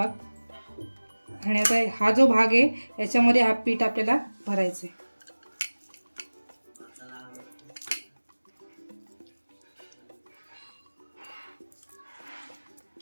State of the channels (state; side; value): inverted; both; correlation -1.00